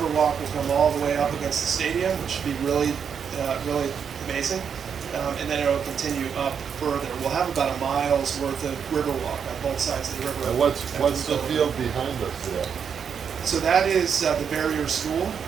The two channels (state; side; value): quieter; left; 7.1 dB